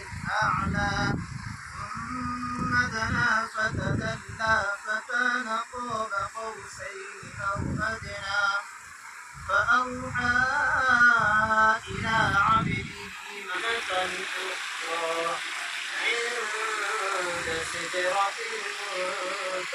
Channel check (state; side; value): identical; both; correlation 1.00